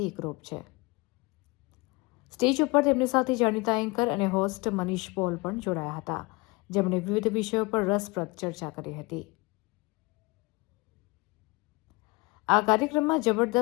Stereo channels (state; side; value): quieter; right; 25.6 dB